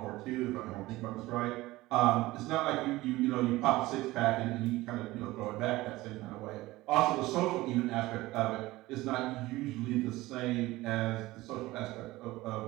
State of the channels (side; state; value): left; quieter; 18.7 dB